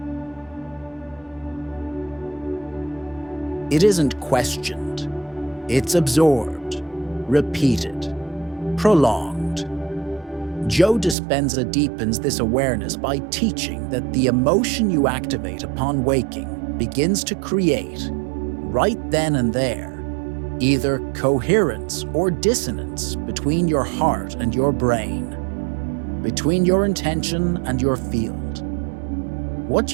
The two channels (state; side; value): drops out; left; at 11.2 s